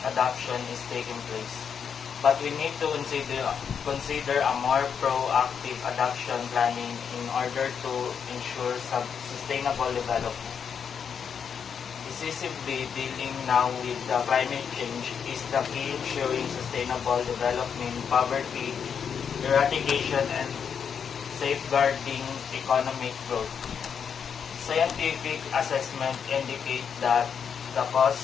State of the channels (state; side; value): quieter; right; 7.1 dB